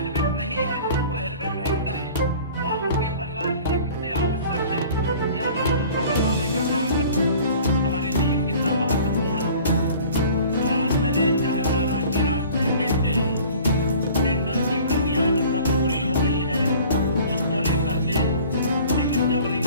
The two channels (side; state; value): both; inverted; correlation -0.47